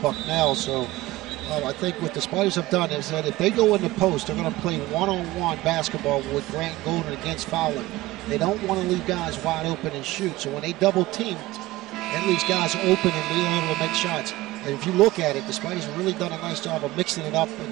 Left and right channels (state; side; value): quieter; left; 18.1 dB